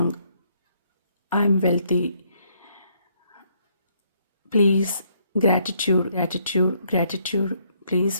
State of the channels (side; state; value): both; inverted; correlation -0.71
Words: I'm wealthy. Please gratitude gratitude gratitude. Please